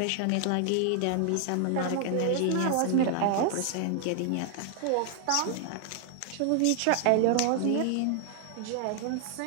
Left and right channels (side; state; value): both; different; correlation 0.00